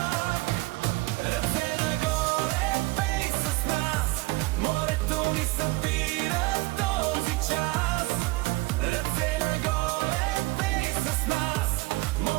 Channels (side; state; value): left; quieter; 22.0 dB